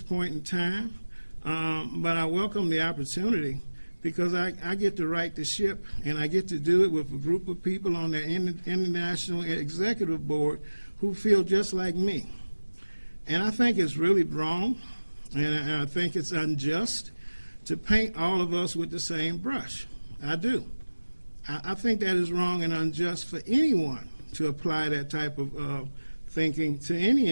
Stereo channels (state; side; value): inverted; both; correlation -1.00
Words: point in time, but I welcome the opportunity because I get to right the ship, and I get to do it with a group of people on the International Executive Board who feel just like me. And I think it's really wrong, and I think it's unjust to paint all of us with the same brush. I do. I think that is wrong and unjust for anyone to apply that type of thinking to any